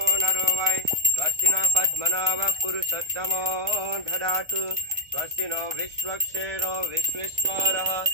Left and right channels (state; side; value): late; left; 1.2 ms